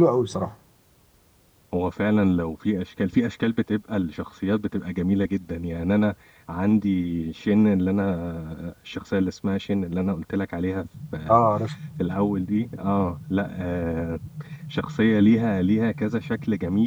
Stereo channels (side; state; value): both; identical; correlation 1.00